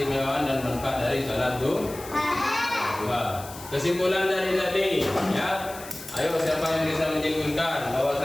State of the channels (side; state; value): left; noise; hiss, 15 dB below the sound